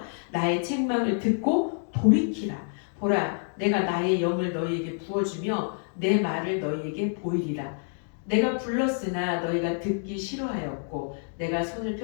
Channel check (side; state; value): right; silent; 60 dB below the other